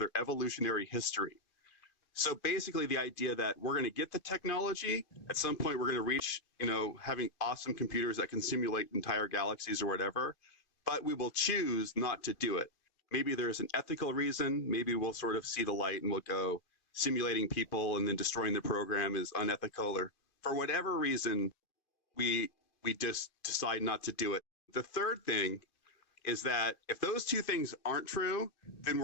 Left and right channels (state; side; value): late; right; 2.5 ms